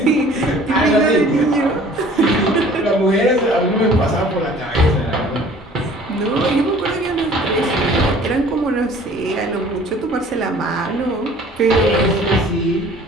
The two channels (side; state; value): both; normal; correlation 0.51